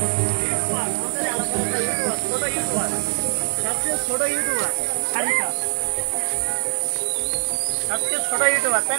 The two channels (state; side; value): silent; left; 59 dB below the other